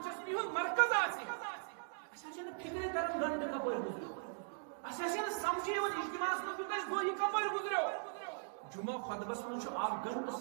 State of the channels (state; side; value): silent; left; digital silence